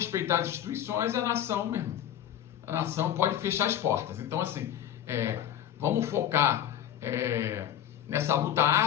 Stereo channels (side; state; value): right; quieter; 10.6 dB